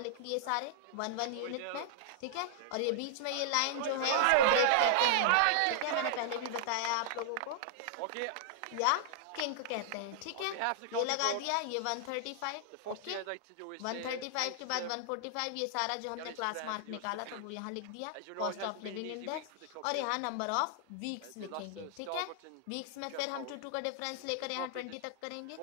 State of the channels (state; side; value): different; both; correlation -0.01